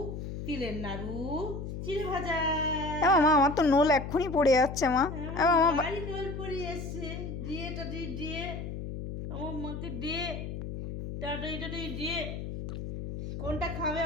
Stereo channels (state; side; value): noise; left; hum, 7 dB below the sound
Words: তিলের নাড়ু, চিড়ে ভাজা। মামা আমার তো নোল এক্ষুনি পড়ে যাচ্ছে মা। মামা বাড়ি নোল পড়ে এসছে। দিয়ে টাটি দিয়ে আমার মাকে দিয়ে টাটাই টাটাই দিয়ে কোনটা খাবে